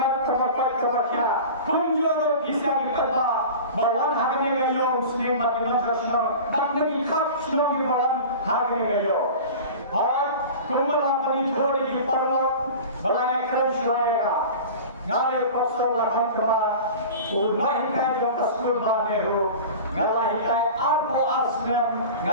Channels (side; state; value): both; inverted; correlation -0.36